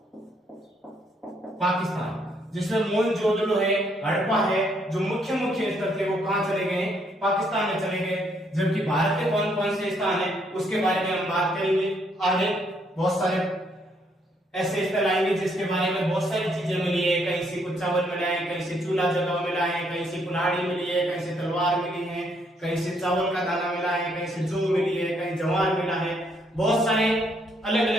पाकिस्तान, जिसमें मोहनजोदड़ो है, हड़प्पा है, जो मुख्य स्थल थे वो कहां चले गए? पाकिस्तान में चले गए। जबकि भारत के कौन कौन से स्थान है उसके बारे में हम बात करेंगे आगे। बहुत सारे ऐसे स्थल आएंगे जिसके बारे में बहुत सारी चीजें मिली है। कहीं से कुछ चावल मिला है, कहीं से चूल्हा जगह मिला है, कहीं से कुल्हाड़ी मिली है, कहीं से तलवार मिली है, कहीं से चावल का दाना मिला है, कहीं से जौ मिली है, कहीं जवार मिला है। बहुत सारे अलग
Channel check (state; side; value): normal; both; correlation 0.71